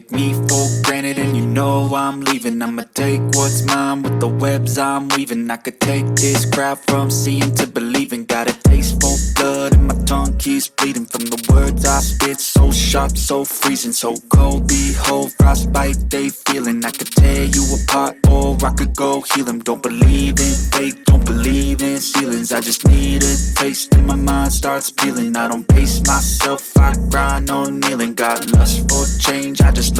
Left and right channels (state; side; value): identical; both; correlation 1.00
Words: me for granted and you know I'm leaving. I'ma take what's mine with the webs I'm weaving. I could take this crowd from seeing to believing. Got a taste for blood and my tongue keeps bleeding from the words I spit. So sharp, so freezing, so cold. Behold, frostbite they feeling. I could tear you apart or I could go heal them. Don't believe in fate, don't believe in ceilings. I just need a taste and my mind starts peeling. I don't pace myself, I grind on kneeling. Got lust for change, I just